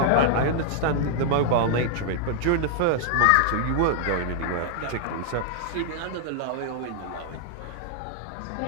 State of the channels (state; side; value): different; both; correlation -0.01